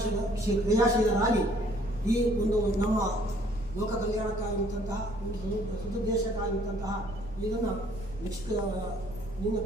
ಕ್ರಿಯಾಶೀಲರಾಗಿ ಈ ಒಂದು ನಮ್ಮ ಲೋಕ ಕಲ್ಯಾಣಕ್ಕಾಗಿದ್ದಂತಹ ಒಂದು ಸದುದ್ದೇಶಕ್ಕಾಗಿದ್ದಂತಹ ಇದನ್ನು ನಿನ್ನ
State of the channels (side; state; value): right; noise; rumble, 15 dB below the sound